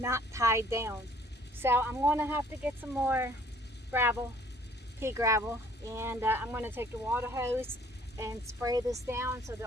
tied down. So I'm going to have to get some more gravel, pea gravel, and I'm going to take the water hose and spray this down so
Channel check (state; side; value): normal; both; correlation 0.57